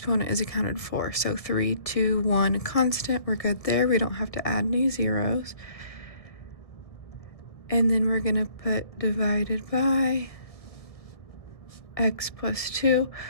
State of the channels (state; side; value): late; right; 1.7 ms